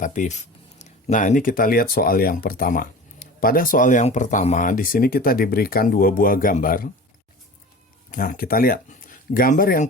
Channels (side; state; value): both; normal; correlation 0.37